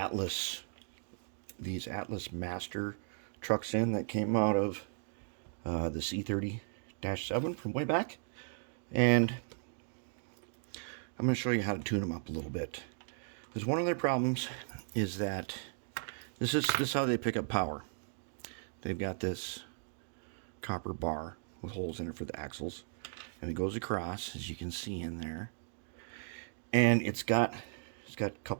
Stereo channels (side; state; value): left; silent; digital silence